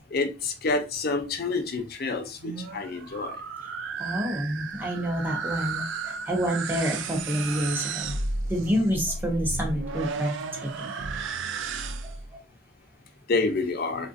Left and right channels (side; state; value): both; normal; correlation 0.53